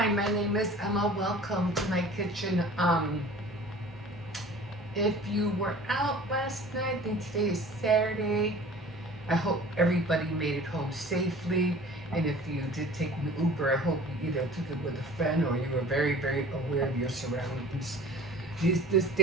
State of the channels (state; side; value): normal; both; correlation 0.45